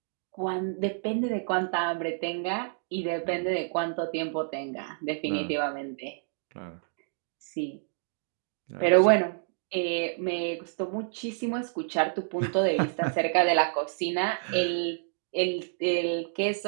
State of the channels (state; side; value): silent; left; digital silence